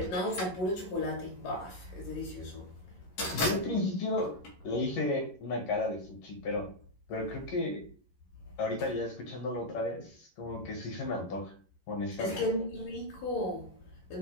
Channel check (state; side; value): late; right; 11 ms